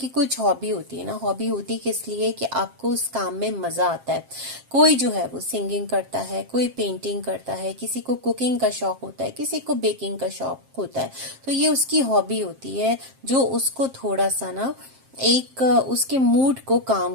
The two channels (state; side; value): late; left; 7.5 ms